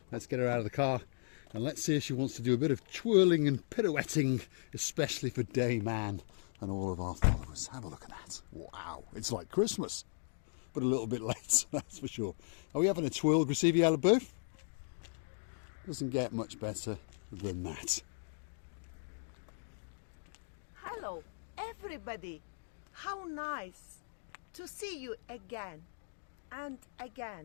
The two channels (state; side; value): silent; right; digital silence